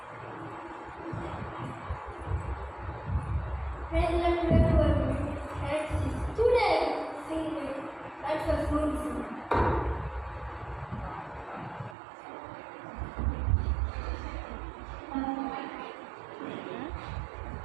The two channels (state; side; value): drops out; left; at 12.0 s